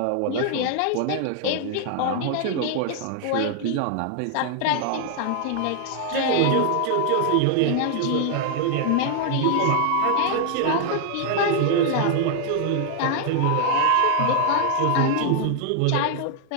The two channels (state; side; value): different; both; correlation 0.00